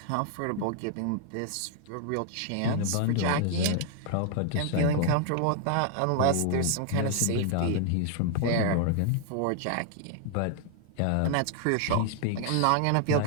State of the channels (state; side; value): different; both; correlation 0.00